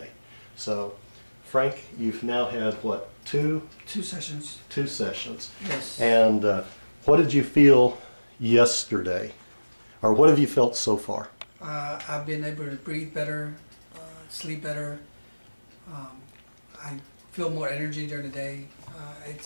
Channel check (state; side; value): inverted; both; correlation -1.00